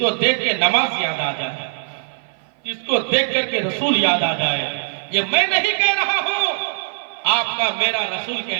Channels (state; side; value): silent; left; 56 dB below the other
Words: देख के नमाज याद आ जाए, जिसको देख करके रसूल याद आ जाए। ये मैं नहीं कह रहा हूँ, आपका मेरा रसूल कह